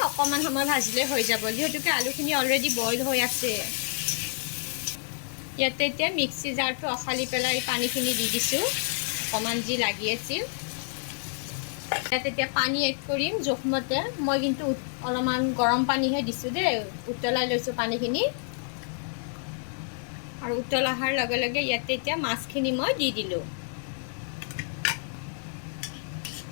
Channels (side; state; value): right; silent; digital silence